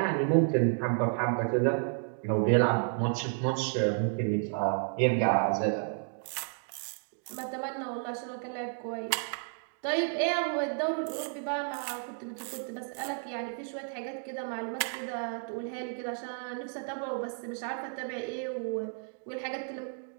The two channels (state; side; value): silent; left; 56 dB below the other